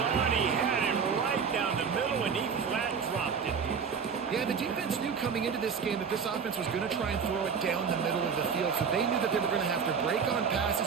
He had him right down the middle, and he flat dropped it. Yeah, the defense knew coming into this game that this offense was going to try and throw it down the middle of the field, so they knew that they were going to have to break on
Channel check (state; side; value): quieter; left; 6.3 dB